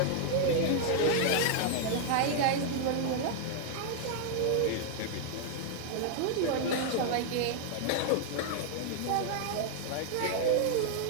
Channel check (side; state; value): both; different; correlation -0.01